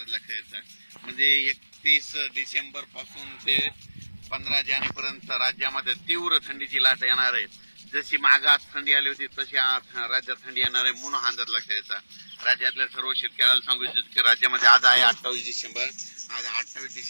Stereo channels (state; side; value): inverted; both; correlation -1.00